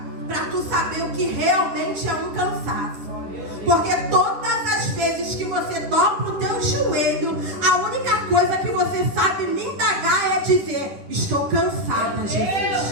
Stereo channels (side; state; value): left; late; 10 ms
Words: para tu saber o que realmente é um cansaço. Porque todas as vezes que você dobra o teu joelho, a única coisa que você sabe me indagar é dizer: estou cansada,